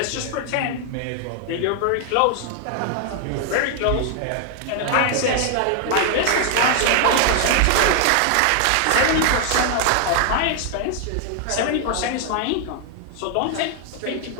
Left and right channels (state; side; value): different; both; correlation 0.00